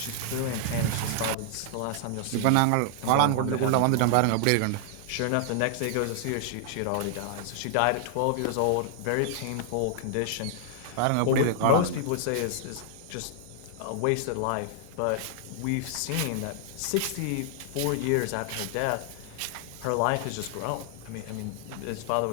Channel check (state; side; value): different; both; correlation 0.00